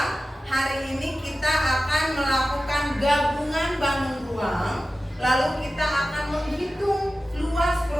Hari ini kita akan melakukan gabungan bangun ruang. Lalu kita akan menghitung luas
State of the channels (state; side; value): normal; both; correlation 0.95